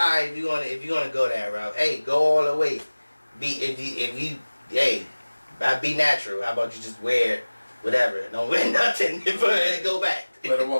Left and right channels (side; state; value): both; inverted; correlation -1.00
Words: if you gonna go that route, hey, go all the way. Be natural. How about you just wear whatever? Don't wear nothing and go back. Let her